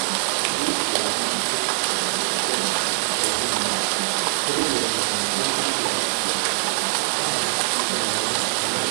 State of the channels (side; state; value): left; silent; digital silence